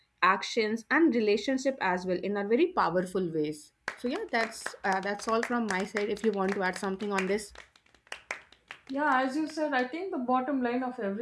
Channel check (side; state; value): both; identical; correlation 1.00